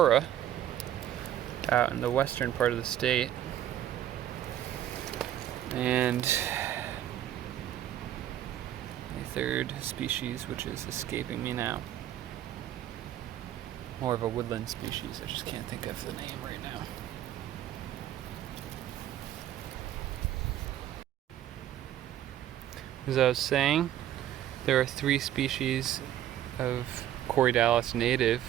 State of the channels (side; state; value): left; quieter; 11.8 dB